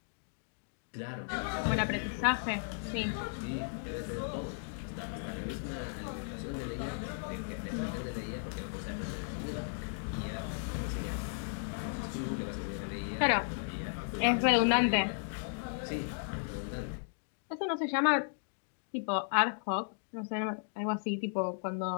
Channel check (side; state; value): right; silent; digital silence